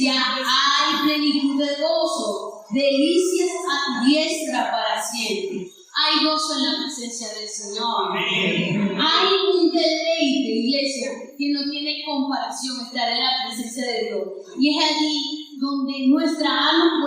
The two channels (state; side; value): identical; both; correlation 1.00